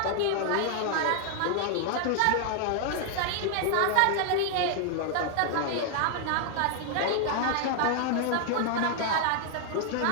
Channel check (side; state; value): both; different; correlation 0.00